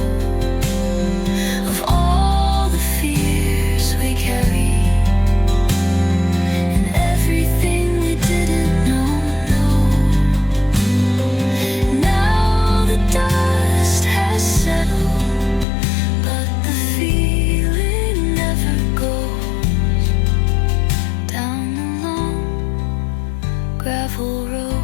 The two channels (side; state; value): right; drops out; at 15.7 s